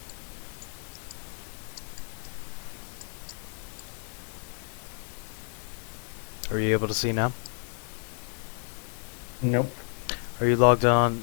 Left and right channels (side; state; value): right; silent; 57 dB below the other